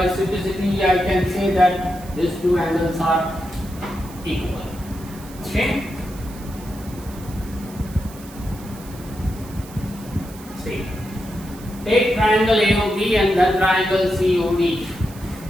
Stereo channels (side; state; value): right; noise; hiss, 19 dB below the sound